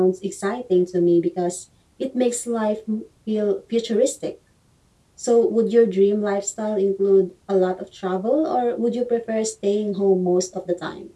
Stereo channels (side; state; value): both; identical; correlation 1.00